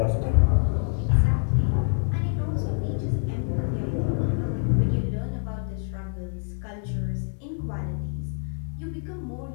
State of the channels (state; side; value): silent; right; 61 dB below the other